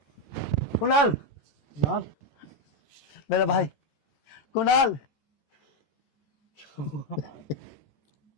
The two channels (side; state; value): right; late; 13 ms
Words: कुणाल, कुणाल, मेरा भाई कुणाल।